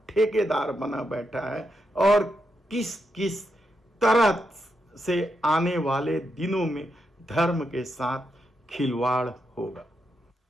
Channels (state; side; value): normal; both; correlation 0.83